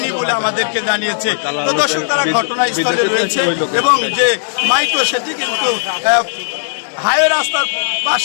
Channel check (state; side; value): silent; right; digital silence